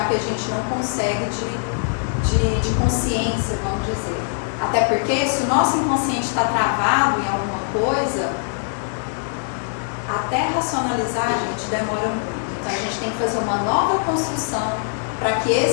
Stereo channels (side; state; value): right; silent; digital silence